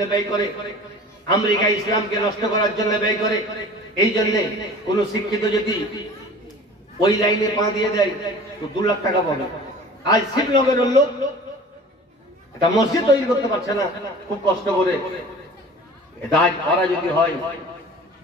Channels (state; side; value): normal; both; correlation 0.42